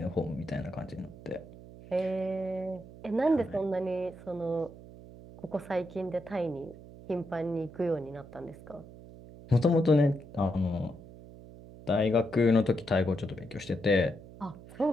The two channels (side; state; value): right; noise; hum, 17 dB below the sound